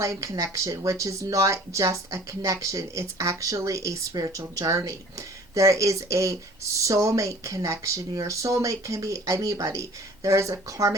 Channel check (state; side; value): normal; both; correlation 0.48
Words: connection, which is not just a connection, it's actually a spiritual journey. There is a soulmate connection. Your soulmate can be anybody. There is a